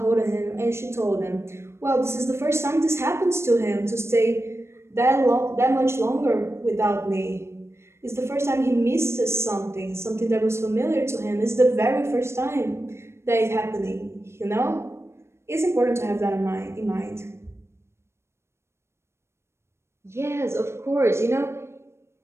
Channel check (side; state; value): left; late; 0.13 ms